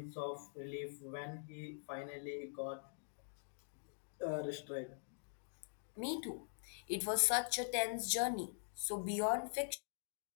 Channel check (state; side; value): silent; right; digital silence